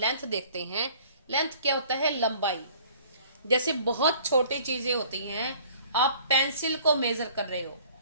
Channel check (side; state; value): both; inverted; correlation -0.52